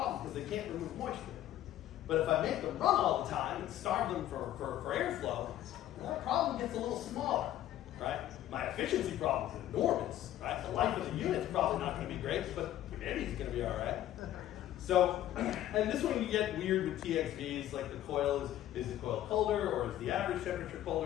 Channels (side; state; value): right; quieter; 12.8 dB